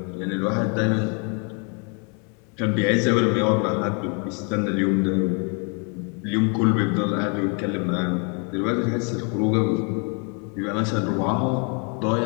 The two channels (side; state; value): right; quieter; 36.7 dB